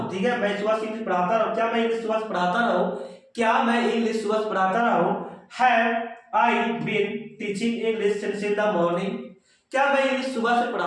ठीक है, मैं सुबह से इंग्लिश पढ़ाता रहा। क्या मैं इंग्लिश सुबह से पढ़ाता रहा हूं? क्या मैं इंग्लिश सुबह से पढ़ाता रहा हूं? Have I been teaching English since in the morning? क्या मैं इंग्लिश सुबह से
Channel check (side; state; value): both; identical; correlation 1.00